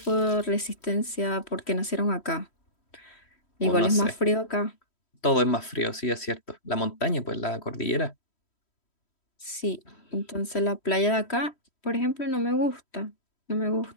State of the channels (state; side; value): late; right; 3.1 ms